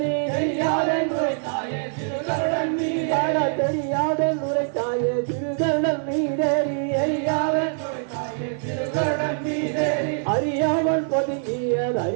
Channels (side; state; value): left; silent; digital silence